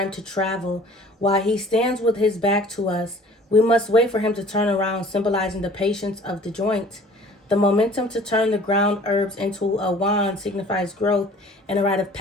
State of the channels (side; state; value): both; normal; correlation 0.49